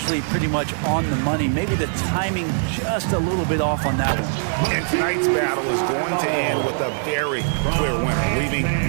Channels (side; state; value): left; silent; 64 dB below the other